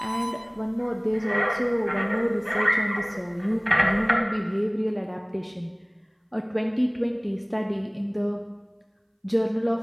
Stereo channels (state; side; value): identical; both; correlation 1.00